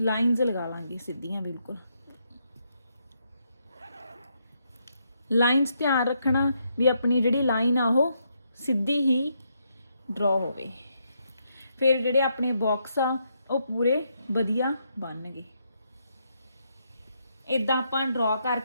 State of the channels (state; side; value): inverted; both; correlation -0.78